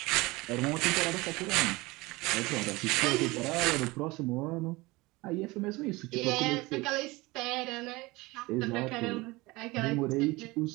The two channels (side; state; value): left; quieter; 22.3 dB